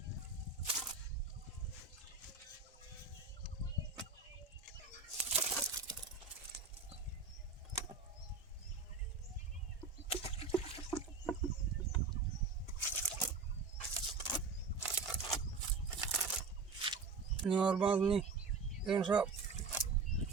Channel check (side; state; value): left; quieter; 4.7 dB